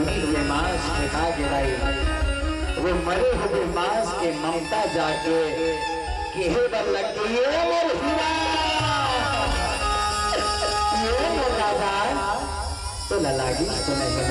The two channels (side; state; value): both; identical; correlation 1.00